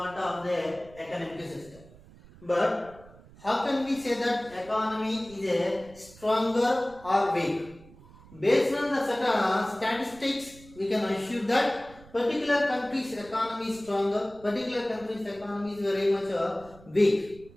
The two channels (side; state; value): right; noise; rumble, 22 dB below the sound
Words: of the economic system. But how can we say that economy is a stronger or weak? Based on the certain statistics, we can assume that particular country's economy is stronger, particular country's economy is very much weak.